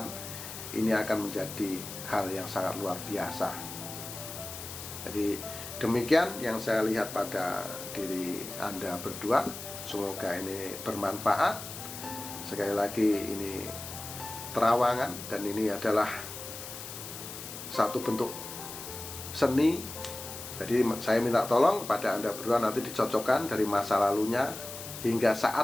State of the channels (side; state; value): left; noise; hiss, 10 dB below the sound